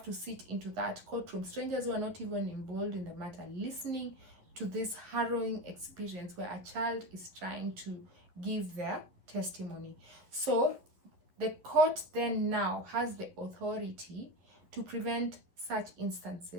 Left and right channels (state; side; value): late; left; 11 ms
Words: to sit into that courtroom, strangers who are not even involved in the matter, listening to this harrowing experience where a child is trying to give their testimony. So the court then now has the authority to prevent such